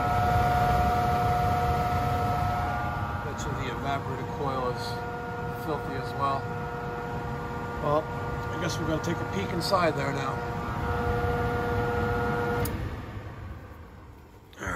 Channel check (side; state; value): both; identical; correlation 1.00